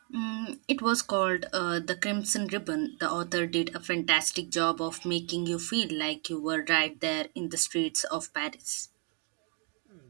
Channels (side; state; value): left; quieter; 37.0 dB